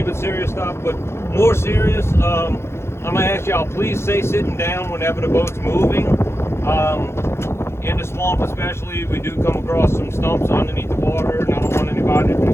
but serious stuff. But more serious, I'm gonna ask y'all, please stay sitting down whenever the boat's moving. In the swamp especially, we do come across some stumps underneath the water, and I don't want anybody to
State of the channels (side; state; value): right; late; 0.12 ms